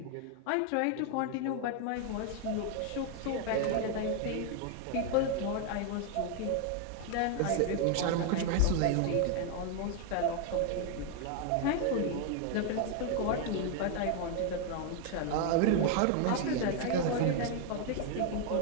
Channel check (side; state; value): both; different; correlation 0.00